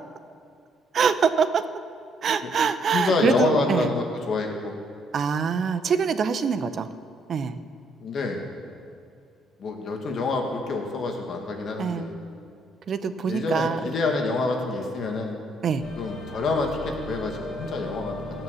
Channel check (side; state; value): both; normal; correlation 0.69